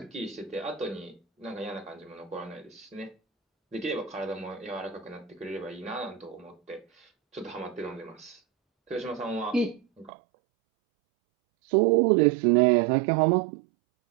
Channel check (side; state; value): left; drops out; at 10.1 s